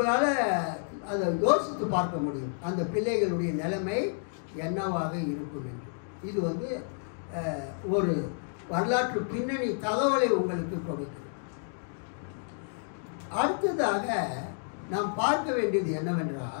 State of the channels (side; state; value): right; silent; digital silence